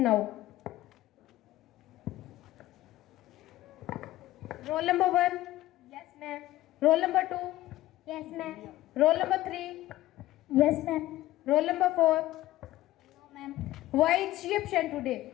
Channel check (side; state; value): right; quieter; 15.7 dB